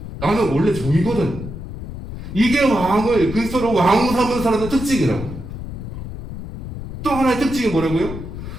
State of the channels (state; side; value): noise; left; rumble, 10 dB below the sound